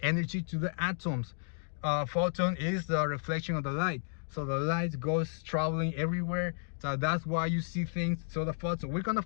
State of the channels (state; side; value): silent; right; digital silence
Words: to the atoms. Photon is the reflection of the light, so the light goes traveling everywhere. So that's why you see things. So the photon, we're gonna